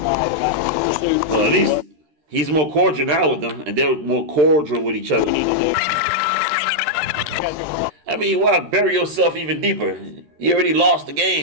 Well, at least he's more cordial now with them, and they're more cordial with each other. I mean, why bury yourself even deeper? You already lost the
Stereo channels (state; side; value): late; left; 13 ms